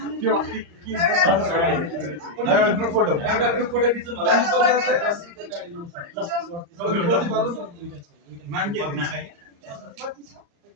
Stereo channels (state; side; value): late; left; 35 ms